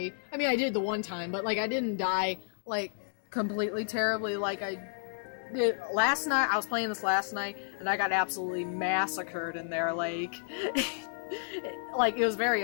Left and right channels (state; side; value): silent; right; digital silence